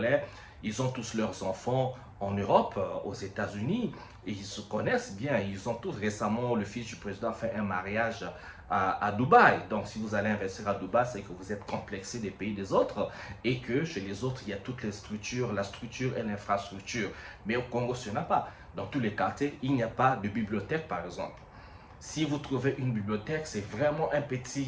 ils ont tous leurs enfants en Europe, aux États-Unis, et ils se connaissent bien. Ils ont tous récemment, le fils du président a fait un mariage à Dubaï. Donc, si vous allez investir à Dubaï, c'est que vous êtes complexé des pays des autres et que chez les autres, il y a toutes les structures, la structure et l'infrastructure. Mais au Congo, ce n'est pas. Dans tous les quartiers, il n'y a pas de bibliothèque, par exemple. Si vous trouvez une bibliothèque, c'est vraiment un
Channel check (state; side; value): identical; both; correlation 1.00